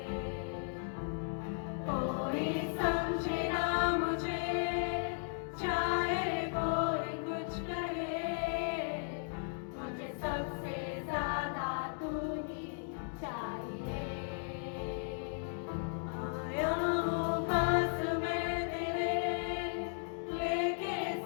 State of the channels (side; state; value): right; silent; digital silence